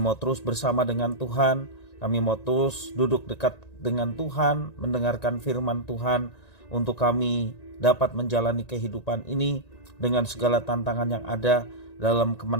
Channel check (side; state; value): right; late; 1.9 ms